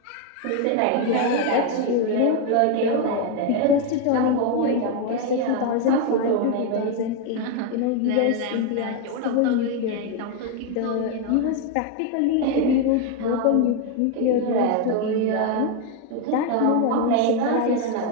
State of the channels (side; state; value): both; different; correlation 0.02